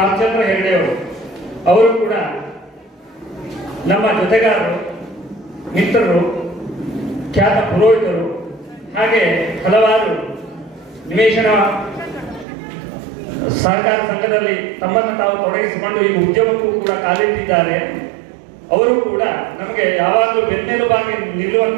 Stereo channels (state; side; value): drops out; left; at 12.5 s